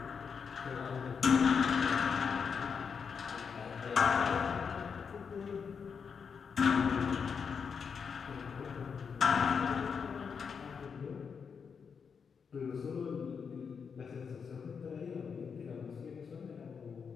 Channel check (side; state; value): right; quieter; 6.2 dB